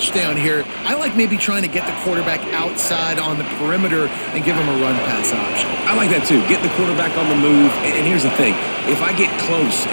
here. I like maybe trying to get the quarterback outside on the perimeter and give him a run-pass option. I like that too. Get the quarterback on the move. And here's the thing. If I get close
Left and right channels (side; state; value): both; inverted; correlation -1.00